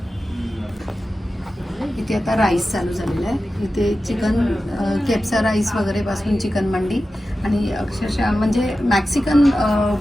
इथे आता राईस चालू झालेला आहे. इथे चिकन केप्सा राईस वगैरे पासून चिकन मंडी आणि अक्षरशः म्हणजे मॅक्सिकन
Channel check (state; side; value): normal; both; correlation 0.93